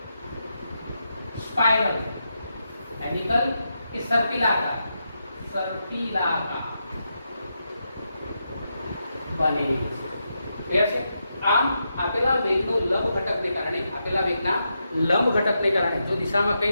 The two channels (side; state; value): both; inverted; correlation -0.85